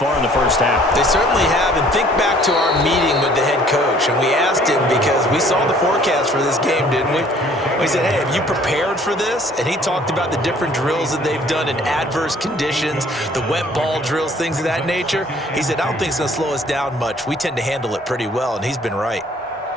in the first half. They certainly have, and think back to our meeting with the head coach, and we asked him because we saw the forecast for this game, didn't we? We said, hey, have you prepared for this? And he talked about the different drills that they've done in adverse conditions, the wet ball drills, things of that nature. He said, I don't think it's going to slow us down much. We tend to handle it pretty well, and he's been right.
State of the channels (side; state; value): both; normal; correlation 0.57